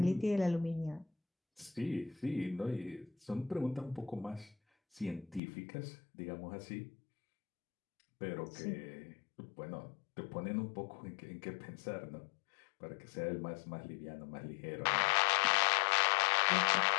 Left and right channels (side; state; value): right; drops out; at 5.4 s